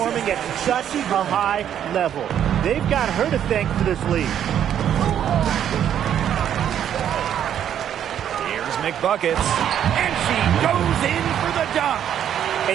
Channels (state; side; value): quieter; left; 9.8 dB